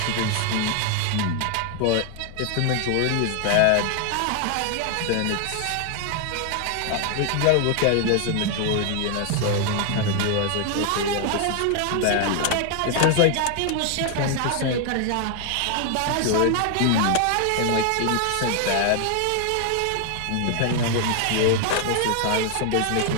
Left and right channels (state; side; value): different; both; correlation 0.00